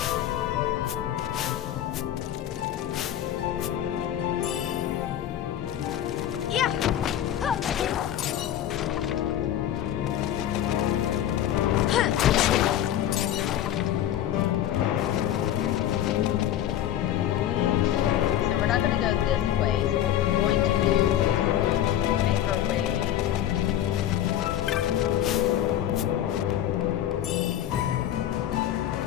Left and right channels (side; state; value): right; quieter; 11.5 dB